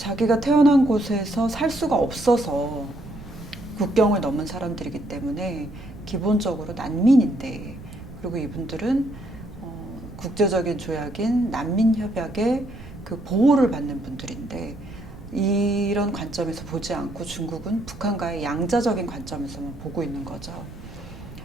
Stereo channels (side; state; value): right; noise; rumble, 15 dB below the sound